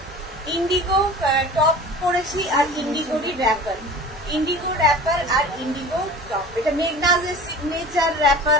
ইন্ডিগো টপ করেছি আর ইন্ডিগোরই র্যাপার, ইন্ডিগো র্যাপার আর ইন্ডিগো টপ। এটা মেঘনাজের সিগনেচার র্যাপার,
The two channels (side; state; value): both; normal; correlation 0.39